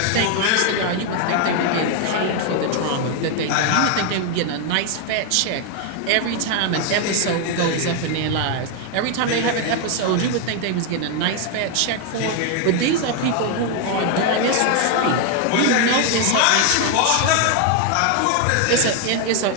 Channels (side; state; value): both; different; correlation 0.01